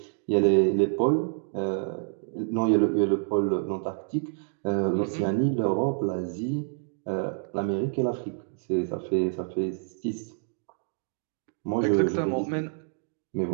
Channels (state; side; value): silent; left; digital silence